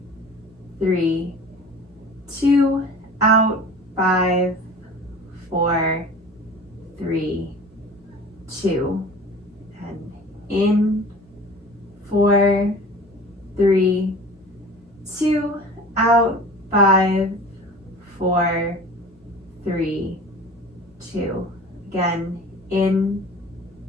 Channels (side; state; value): both; normal; correlation 0.41